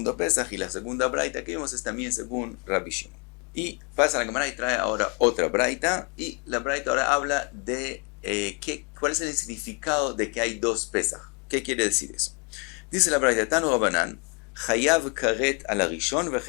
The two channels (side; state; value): right; quieter; 34.3 dB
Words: Pesach, y la segunda braita que vimos es también según Rabbi Shimon. Y pasa la Gemara y trae ahora otra braita, y la braita ahora habla de cuál es el significado de que hay dos Pesach. ¿Qué quiere decir eso? Dice la braita, Tanu Rabanan, Chayav karet al arishon ve